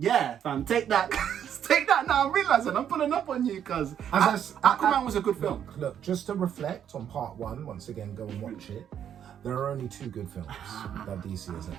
fam. Take that. Take that now. I'm realizing I'm pulling up on you because Aquaman was a good film. Look, just to reflect on part one, once again, go and watch it. There are only 2 good films that DC has ever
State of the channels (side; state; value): left; quieter; 9.2 dB